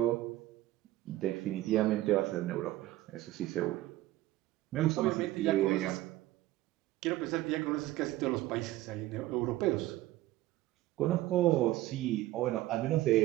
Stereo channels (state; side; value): quieter; left; 16.1 dB